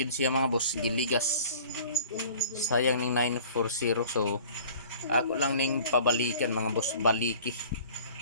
gid siya mga boss, giligas. Sayang ning 940. So ako lang ning pabalikan mga boss, baliki.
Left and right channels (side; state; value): both; inverted; correlation -0.48